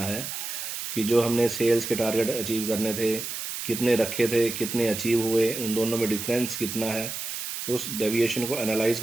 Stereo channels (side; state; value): right; noise; hiss, 6 dB below the sound